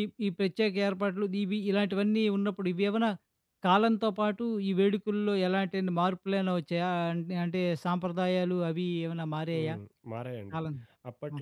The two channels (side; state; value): both; identical; correlation 1.00